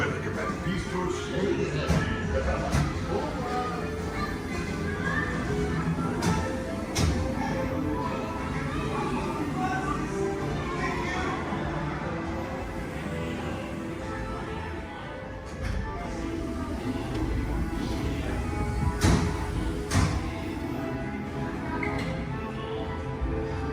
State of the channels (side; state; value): both; identical; correlation 1.00